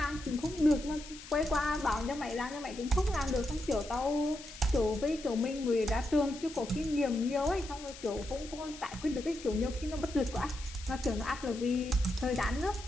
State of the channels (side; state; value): left; noise; hiss, 15 dB below the sound